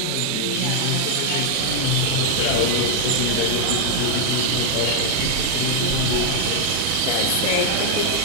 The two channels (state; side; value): different; both; correlation 0.00